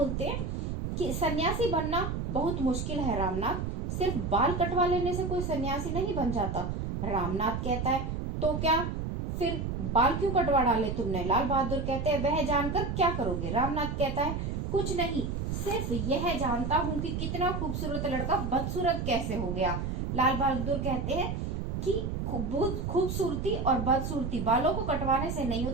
हैं कि सन्यासी बनना बहुत मुश्किल है रामनाथ, सिर्फ बाल कटवा लेने से कोई सन्यासी नहीं बन जाता। रामनाथ कहता है तो क्या फिर बाल क्यों कटवा डाले तुमने? लाल बहादुर कहते हैं वह जानकर क्या करोगे? रामनाथ कहता है कुछ नहीं, सिर्फ यह जानता हूँ कि कितना खूबसूरत लड़का बदसूरत कैसे हो गया। लाल बहादुर कहते हैं कि खूबसूरती और बदसूरती बालों को कटवाने से नहीं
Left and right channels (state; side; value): noise; right; rumble, 3 dB below the sound